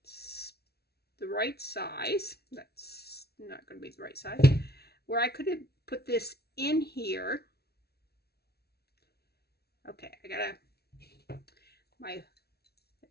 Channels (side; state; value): right; late; 0.46 ms